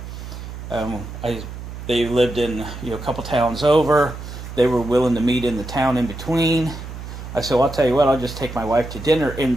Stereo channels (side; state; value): right; noise; hum, 10 dB below the sound